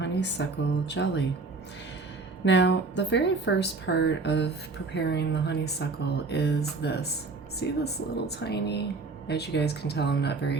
jelly. Now, the very first part of preparing the honeysuckle is this. See this little tiny, as you guys can tell, I'm not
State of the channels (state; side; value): quieter; left; 3.9 dB